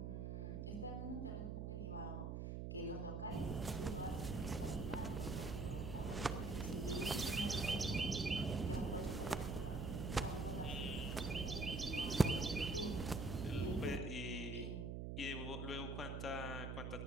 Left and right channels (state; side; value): noise; right; hum, 4 dB below the sound